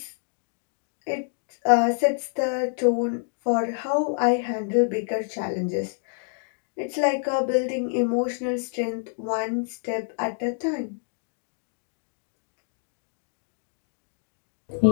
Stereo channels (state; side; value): silent; right; digital silence